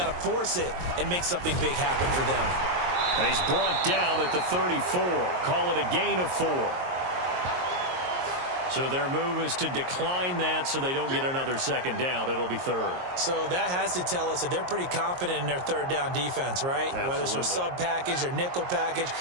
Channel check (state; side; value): late; left; 22 ms